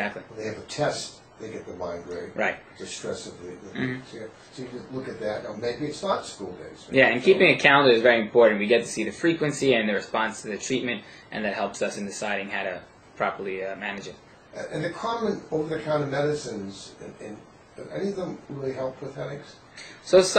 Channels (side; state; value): both; identical; correlation 1.00